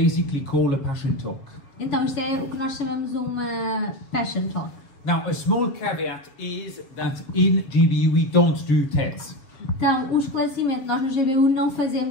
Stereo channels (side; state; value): right; late; 7.3 ms